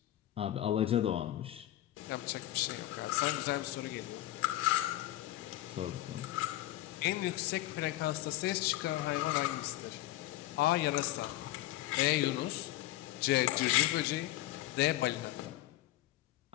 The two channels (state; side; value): quieter; right; 15.4 dB